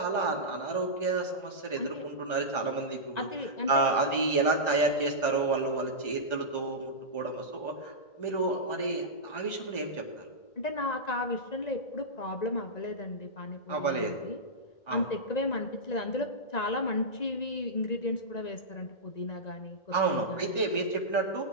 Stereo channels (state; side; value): late; right; 1.3 ms